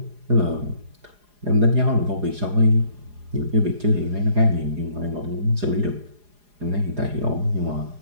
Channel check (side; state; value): left; late; 4.8 ms